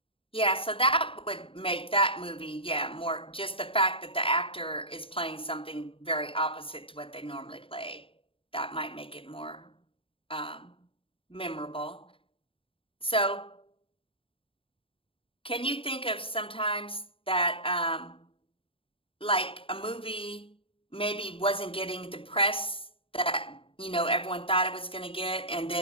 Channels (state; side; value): late; right; 0.26 ms